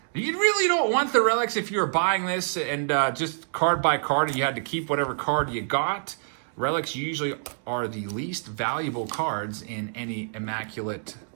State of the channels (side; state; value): left; silent; digital silence